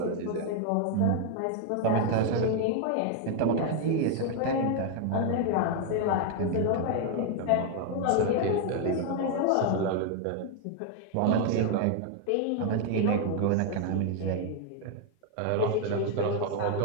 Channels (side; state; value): both; different; correlation 0.00